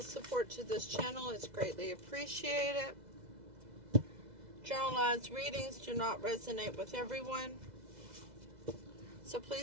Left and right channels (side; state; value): left; late; 2.0 ms